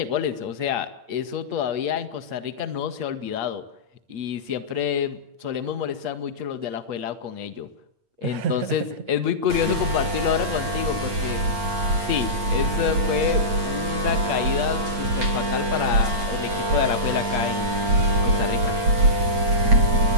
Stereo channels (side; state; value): left; late; 8.8 ms